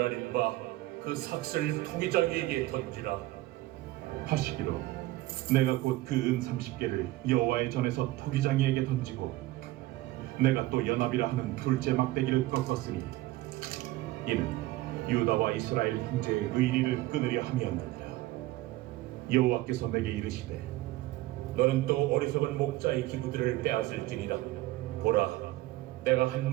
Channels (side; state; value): left; quieter; 17.6 dB